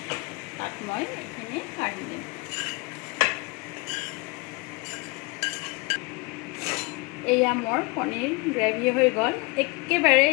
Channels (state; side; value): quieter; right; 26.9 dB